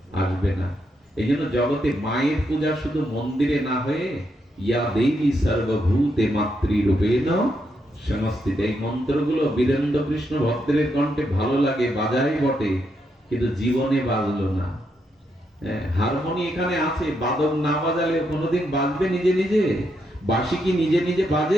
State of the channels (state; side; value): normal; both; correlation 0.80